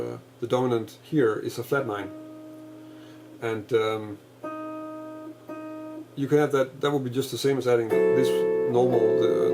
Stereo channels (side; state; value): both; identical; correlation 1.00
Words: dominant here is a flat 9. And you can have that would be just the same as adding this normal,